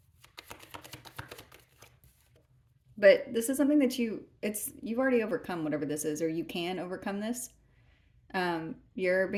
But this is something that you've already overcome whatever this is, or you can overcome this. You're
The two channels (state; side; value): identical; both; correlation 1.00